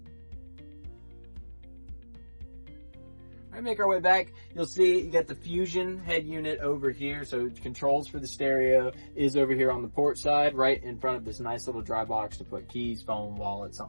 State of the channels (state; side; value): inverted; both; correlation -1.00